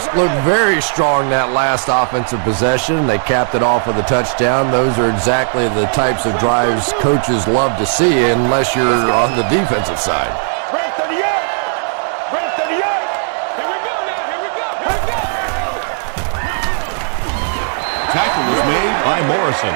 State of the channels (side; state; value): left; silent; digital silence